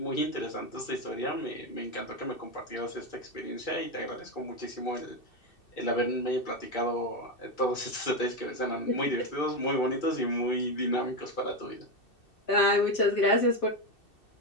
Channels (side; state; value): right; late; 2.7 ms